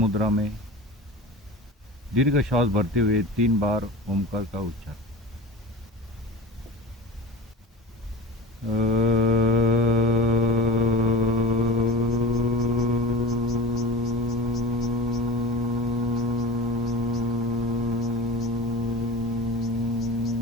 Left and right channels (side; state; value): both; normal; correlation 0.32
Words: में दीर्घ श्वास भरते हुए 3 बार ओमकार का उच्चारण।